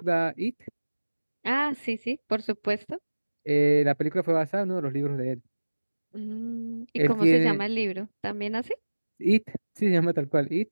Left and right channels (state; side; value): inverted; both; correlation -1.00